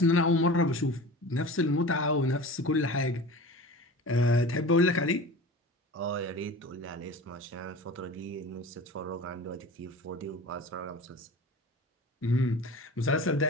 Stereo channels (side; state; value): both; normal; correlation 0.36